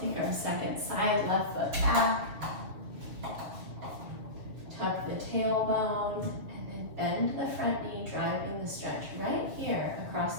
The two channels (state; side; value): late; left; 6.9 ms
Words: our second side, left foot back. Tuck the tailbone, and then bend the front knee, driving the stretch right here